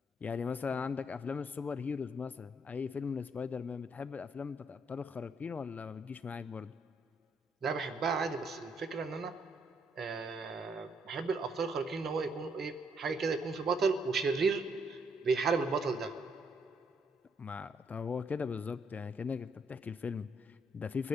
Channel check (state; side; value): normal; both; correlation 0.72